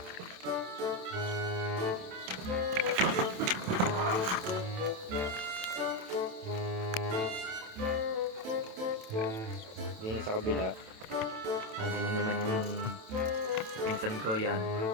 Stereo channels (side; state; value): left; late; 27 ms